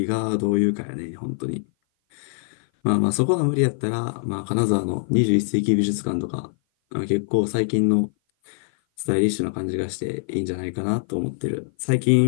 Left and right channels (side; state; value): right; silent; 57 dB below the other